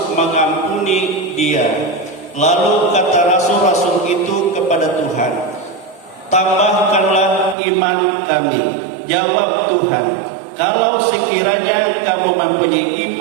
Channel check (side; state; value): left; drops out; at 7.6 s